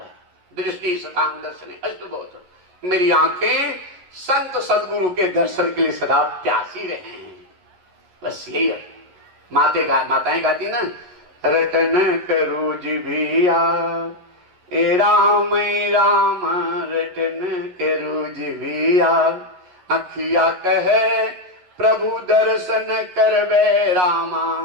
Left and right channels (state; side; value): late; left; 11 ms